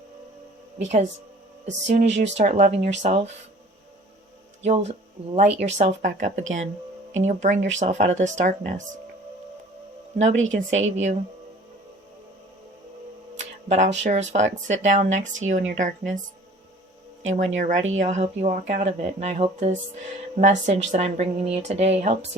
Because as soon as you start loving yourself, you'll light yourself back up again. And you'll bring yourself out of this darkness. Nobody can save you. But I'll sure as fuck sit down next to you in your darkness. And when you're ready, I'll help you walk out of it. And I hope this message that I'm bringing you today helps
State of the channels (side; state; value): both; normal; correlation 0.48